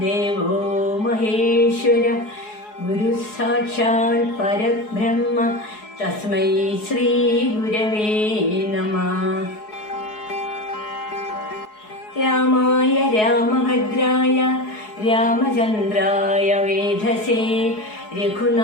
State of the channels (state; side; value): late; right; 4.7 ms